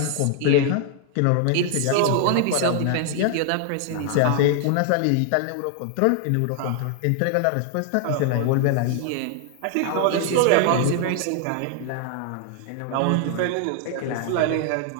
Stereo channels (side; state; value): both; different; correlation 0.00